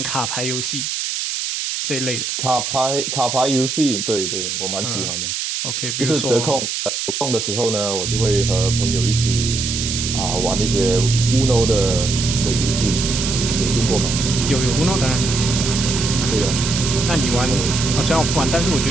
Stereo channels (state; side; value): noise; right; hiss, 3 dB below the sound